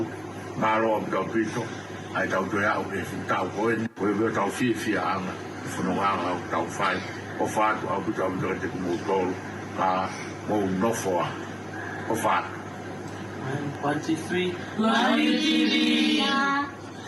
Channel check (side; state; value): both; identical; correlation 1.00